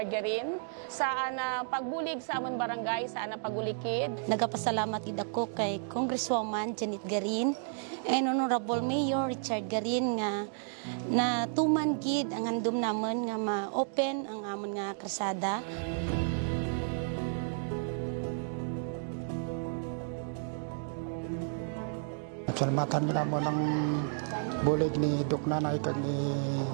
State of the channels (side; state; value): left; silent; digital silence